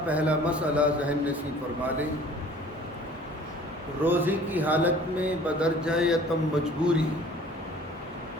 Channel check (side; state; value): both; normal; correlation 0.50